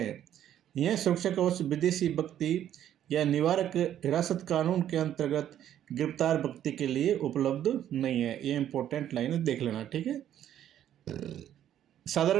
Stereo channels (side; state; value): left; quieter; 10.9 dB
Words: यह सुरक्षा कवच विदेशी व्यक्ति या निवारक हिरासत कानून के अंतर्गत गिरफ्तार व्यक्ति के लिए उपलब्ध नहीं है। ये इंपॉर्टेंट लाइन है, देख लेना। ठीक है,